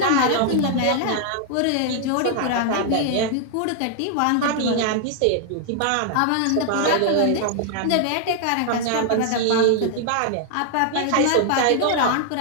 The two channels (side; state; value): both; different; correlation 0.00